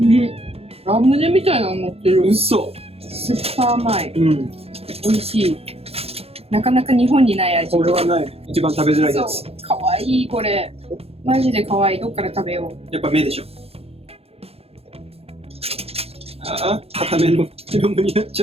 ラムネみたいなの乗ってる。嘘。スーパー甘い。美味しい。なかなか日本にない味。これはない。一番食べづらいやつ。かわいいこれ。マジでかわいい。どっから食べよう。やっぱ目でしょ。ああ、固めのラムになっち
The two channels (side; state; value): left; late; 0.29 ms